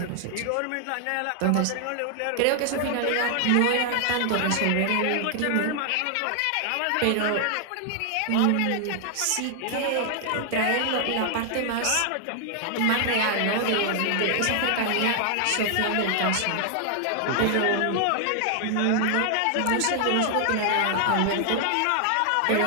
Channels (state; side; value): different; both; correlation 0.00